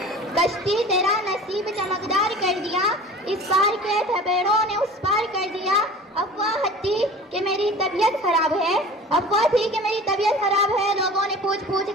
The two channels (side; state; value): both; normal; correlation 0.40